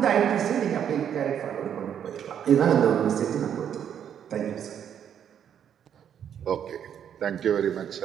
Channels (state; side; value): quieter; left; 8.9 dB